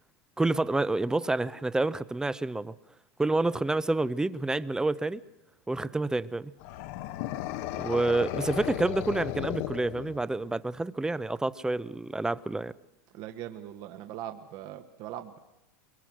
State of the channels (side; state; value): both; normal; correlation 0.88